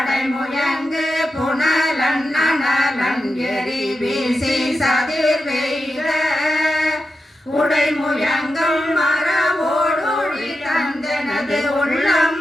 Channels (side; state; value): both; normal; correlation 0.89